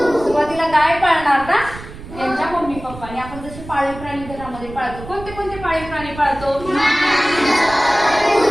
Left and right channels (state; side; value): noise; right; rumble, 14 dB below the sound